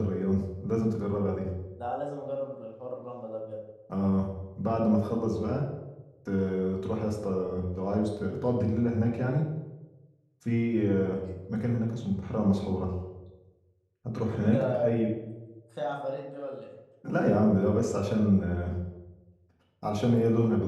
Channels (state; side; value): identical; both; correlation 1.00